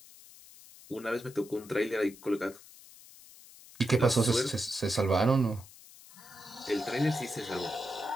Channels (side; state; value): left; noise; hiss, 21 dB below the sound